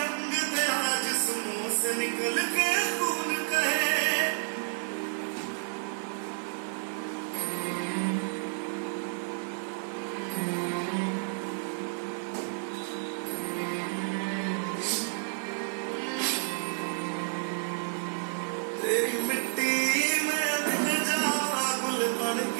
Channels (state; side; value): silent; left; 57 dB below the other